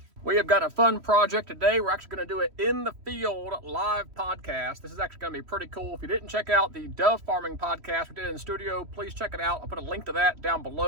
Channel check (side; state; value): left; late; 3.1 ms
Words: We have got a fun project today. We're actually going to do it in the field live podcast. This is actually going to be pretty cool. If you didn't check out the dove farming podcast we did in the studio, please check it out. I'll put a link to that down